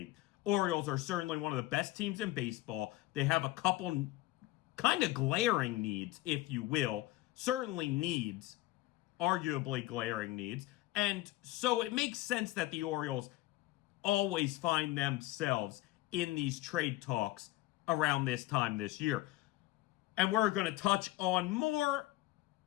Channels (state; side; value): quieter; right; 17.8 dB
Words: Orioles are certainly one of the best teams in baseball. They have a couple kind of glaring needs, if you will. Certainly needs, arguably glaring needs. And so it makes sense that the Orioles always find themselves in these trade talks around this time this year. And we're going to touch on more